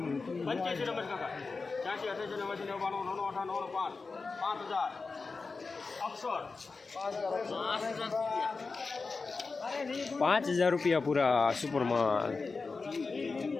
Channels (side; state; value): right; quieter; 4.2 dB